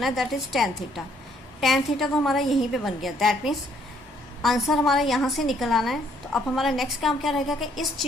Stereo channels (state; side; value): normal; both; correlation 0.67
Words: है that is tan theta. tan theta तो हमारा यहीं पे बन गया, दैट मीन्स आंसर हमारा यहाँ से निकल आना है. तो अब हमारा नेक्स्ट काम क्या रहेगा कि इस